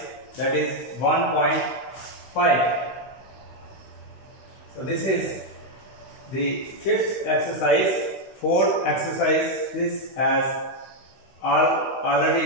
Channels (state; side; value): late; right; 16 ms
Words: that is 1.5. So this is the fifth exercise. Fourth exercise this has